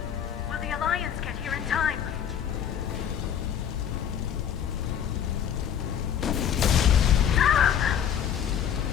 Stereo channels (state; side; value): quieter; right; 8.9 dB